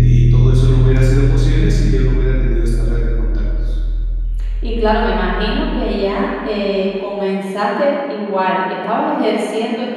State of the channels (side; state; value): both; identical; correlation 1.00